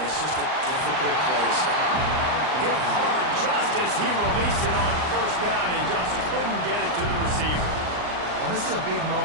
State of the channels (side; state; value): left; late; 39 ms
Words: it's just a difficult play to stop. Hit hard just as he released it on first down and just couldn't get it to the receiver. Well, this is a big